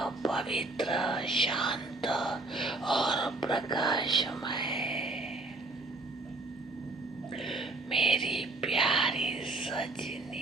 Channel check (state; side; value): quieter; left; 3.1 dB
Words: पवित्र, शांत और प्रकाशमय। मेरी प्यारी